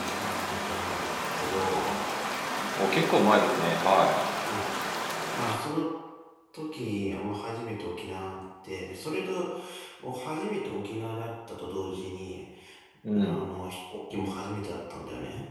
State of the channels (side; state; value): both; identical; correlation 1.00